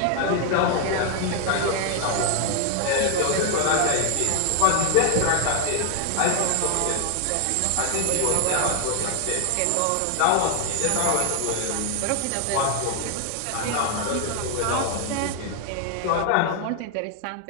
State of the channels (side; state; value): both; different; correlation 0.00